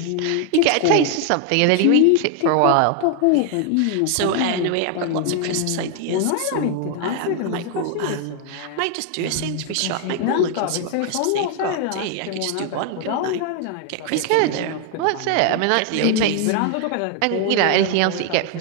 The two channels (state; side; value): different; both; correlation 0.00